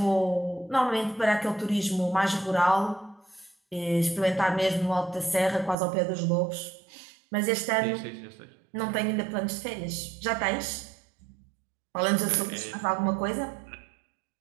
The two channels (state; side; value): drops out; left; at 5.8 s